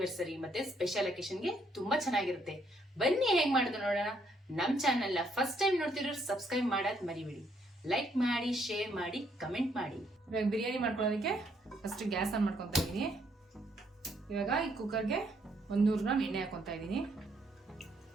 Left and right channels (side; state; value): both; normal; correlation 0.71